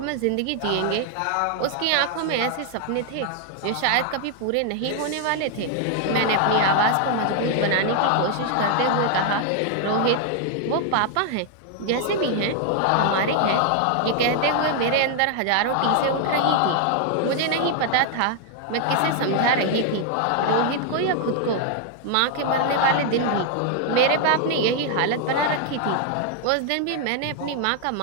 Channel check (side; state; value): both; different; correlation 0.00